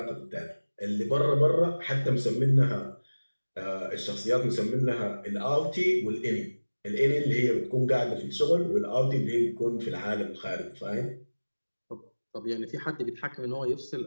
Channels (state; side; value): inverted; both; correlation -1.00